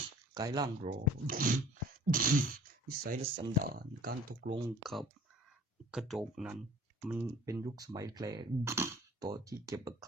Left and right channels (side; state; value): both; normal; correlation 0.49